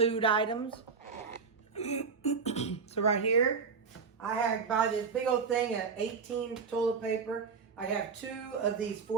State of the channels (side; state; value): left; quieter; 5.4 dB